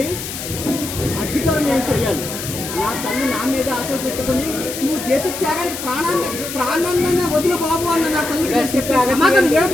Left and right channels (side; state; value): left; noise; hiss, 8 dB below the sound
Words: అగ్గితరం ఏం చెయ్యాలి? నా తల్లి నా మీద ఆశలు పెట్టుకుని నువ్వు దేశ త్యాగానికి ప్రాణాన్ని వదిలి బాబు అన్న నా తల్లికి